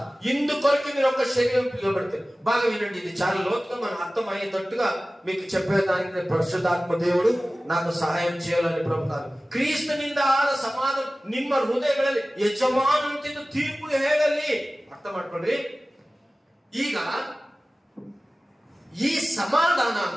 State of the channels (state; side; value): normal; both; correlation 0.97